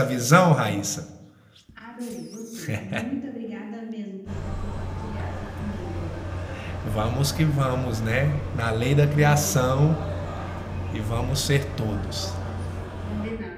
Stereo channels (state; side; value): identical; both; correlation 1.00